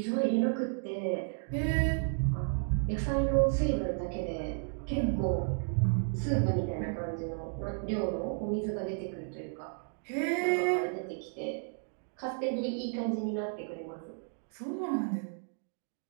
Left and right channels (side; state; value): left; silent; 56 dB below the other